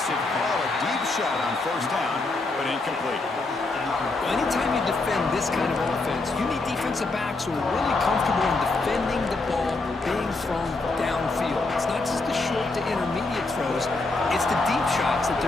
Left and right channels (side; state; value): right; quieter; 3.3 dB